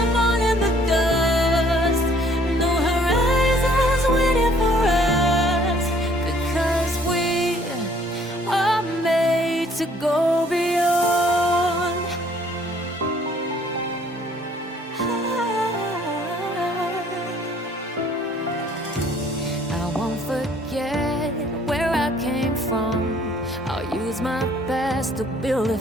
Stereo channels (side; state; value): both; normal; correlation 0.59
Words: all in the dust. No horizons waiting for us, because we are made to go beyond. I won't forget where I came from. I'll use my best to build a